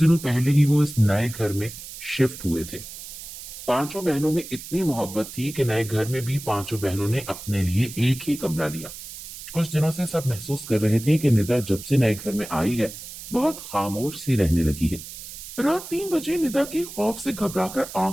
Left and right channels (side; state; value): right; noise; hiss, 12 dB below the sound